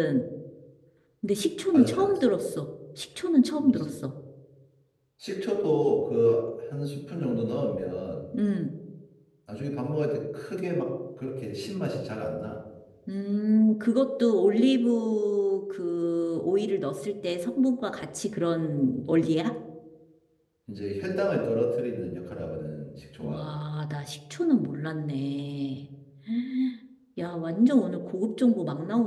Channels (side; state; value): both; identical; correlation 1.00